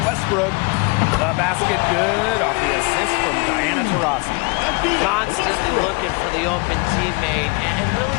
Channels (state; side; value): quieter; right; 28.8 dB